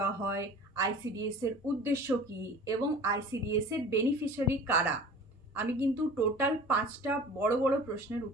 হয়, আইসিডিএস এর উদ্দেশ্য কি এবং আইসিডিএস এর বেনিফিশিয়ারি কারা। আমি কিন্তু টোটাল 5টা বড় বড় প্রশ্নের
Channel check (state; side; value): normal; both; correlation 0.42